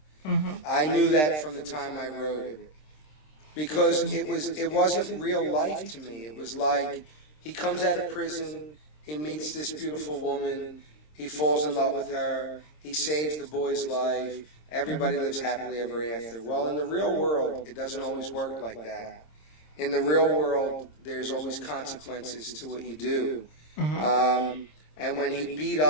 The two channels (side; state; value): right; late; 26 ms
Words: I knew that from the time I wrote it, because it wasn't real life to me. It was like, he comes out of prison, he meets this beautiful woman, he falls in love with her, he saves the boy's life, everybody lives happily ever after. Well, in the real world, it doesn't always work like that. In the real world, there's always consequences to what you do. And when he beat